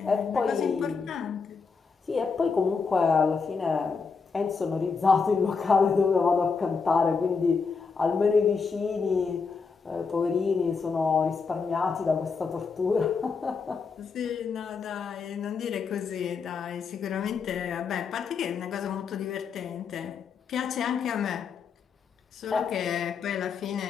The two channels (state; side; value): quieter; right; 5.2 dB